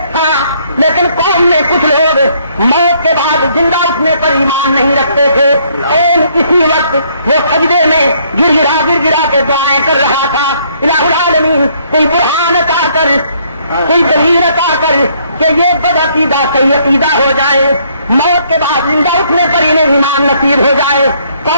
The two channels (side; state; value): both; inverted; correlation -0.67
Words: تھا, لیکن قوم میں کچھ لوگ موت کے بعد زندہ اٹھنے پر ایمان نہیں رکھتے تھے. اور اسی وقت وہ سجدے میں گر گرا کے دعائیں کر رہا تھا, الہ العالمین کوئی برہان عطا کر, کوئی دلیل عطا کر کہ یہ بد عقیدہ صحیح عقیدہ ہو جائے, موت کے بعد زندہ اٹھنے پر انہیں ایمان نصیب ہو جائے.